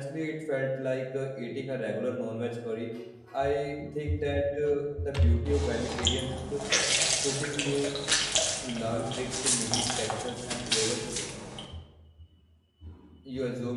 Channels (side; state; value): both; identical; correlation 1.00